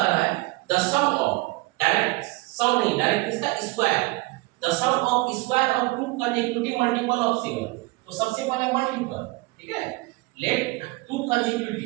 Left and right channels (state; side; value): quieter; left; 22.9 dB